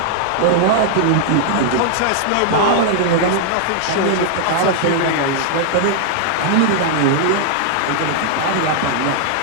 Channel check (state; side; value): different; both; correlation -0.01